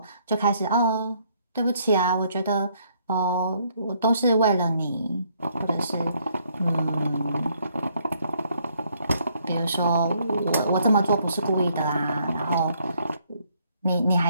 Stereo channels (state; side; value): inverted; both; correlation -0.68